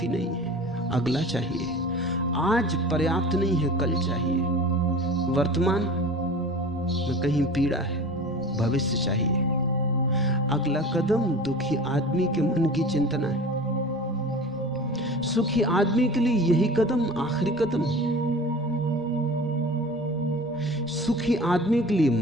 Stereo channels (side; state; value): both; normal; correlation 0.38